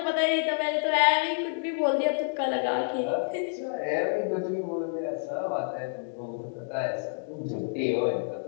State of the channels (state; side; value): silent; right; digital silence